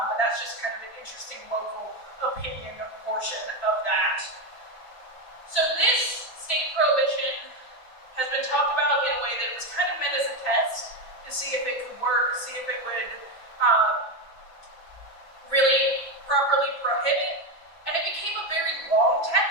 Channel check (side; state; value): right; late; 6.0 ms